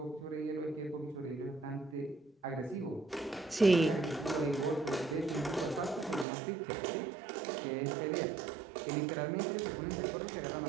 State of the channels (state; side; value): drops out; left; at 6.2 s